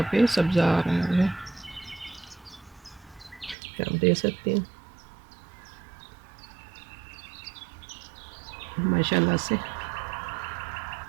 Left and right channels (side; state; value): left; drops out; at 3.6 s